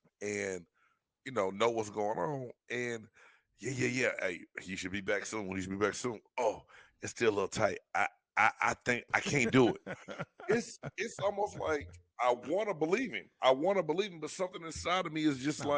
and know what's going on. And yeah. Hey, you should be back soon. You should be back soon. Oh, it's still a little tight. I think I can't do it. It's almost like I want to believe him. But something inside of me is just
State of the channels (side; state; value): both; identical; correlation 1.00